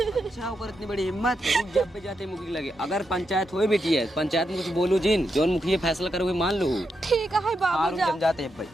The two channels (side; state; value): both; normal; correlation 0.84